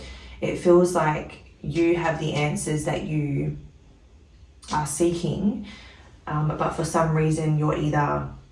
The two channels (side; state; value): both; identical; correlation 1.00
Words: It feels like you have the answers that you are seeking, but for some reason you're either